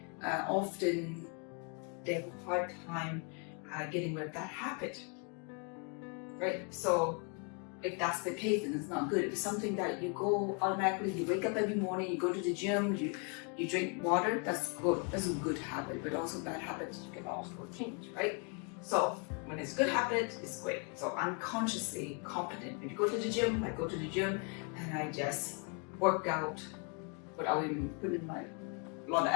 Often they have a hard time getting rid of that habit, right? So if that's the case, then it's not good. If it's something that you go automatically, you wake up every morning, you go to the gym, you drink water, that's good. That's a good habit. But also bad habits, you can also change, right? So when it's a good habit, it's great. So unconsciously competent. If you go to the gym, I go to the gym and I just work out without even putting a lot of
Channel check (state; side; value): quieter; right; 37.4 dB